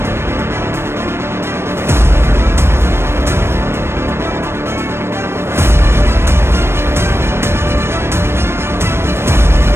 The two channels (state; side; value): late; left; 0.12 ms